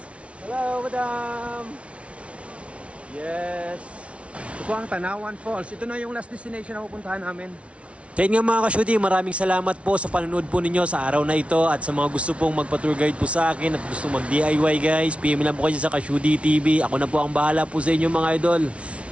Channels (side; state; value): left; late; 0.062 ms